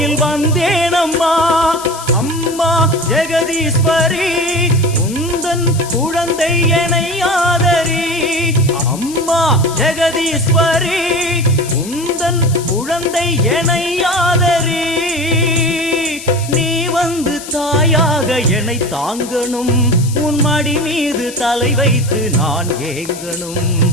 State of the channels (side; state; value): left; noise; hiss, 13 dB below the sound